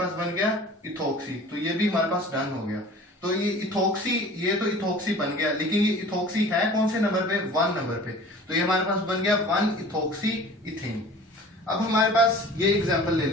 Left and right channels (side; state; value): both; normal; correlation 0.44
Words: बन गया इथोक्सी, तो ये भी हमारे पास डन हो गया। तो ये इथोक्सी, ये तो इथोक्सी बन गया, लेकिन ये इथोक्सी है कौन से नंबर पे, 1 नंबर पे। तो ये हमारे पास बन गया 1 इथोक्सी इथेन। अब हमारे पास ये एग्जांपल ले